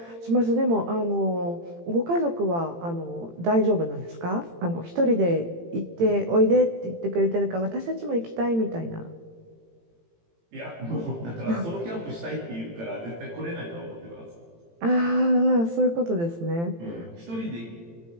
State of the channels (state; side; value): late; left; 18 ms